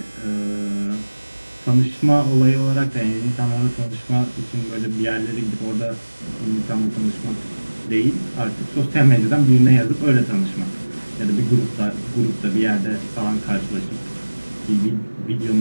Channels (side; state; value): both; inverted; correlation -1.00